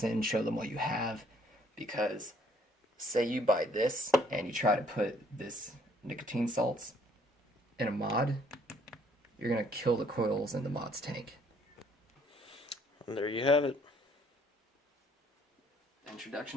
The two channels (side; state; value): both; normal; correlation 0.63